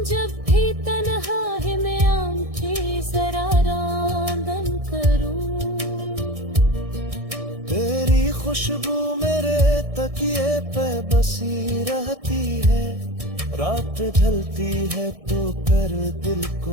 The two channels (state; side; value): late; left; 1.6 ms